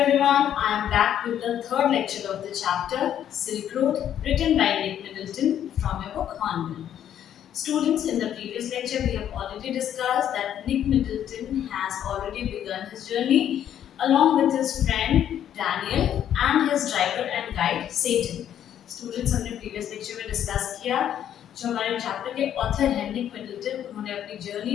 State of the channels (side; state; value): right; quieter; 10.2 dB